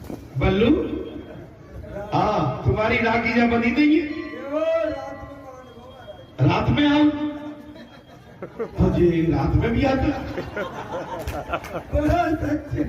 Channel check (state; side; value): identical; both; correlation 1.00